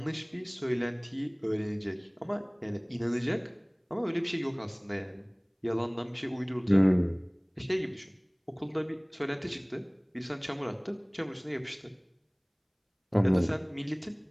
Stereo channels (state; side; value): identical; both; correlation 1.00